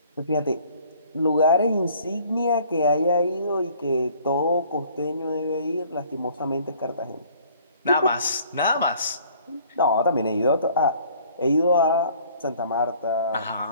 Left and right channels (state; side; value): inverted; both; correlation -0.56